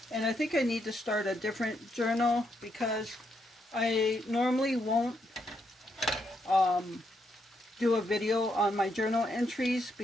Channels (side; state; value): both; normal; correlation 0.78